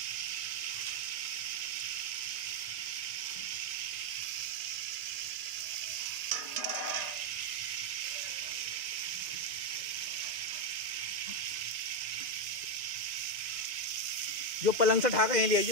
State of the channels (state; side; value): late; left; 2.0 ms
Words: जो पलंग से ठाका यहीं ले